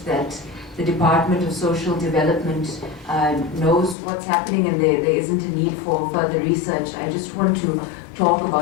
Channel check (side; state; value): right; drops out; at 4.0 s